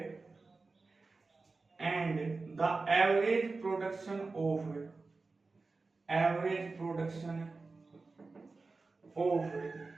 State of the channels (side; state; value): left; quieter; 3.8 dB